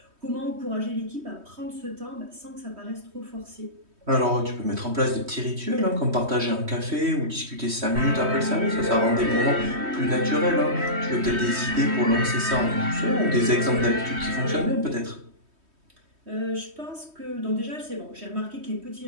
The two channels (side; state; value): left; late; 3.2 ms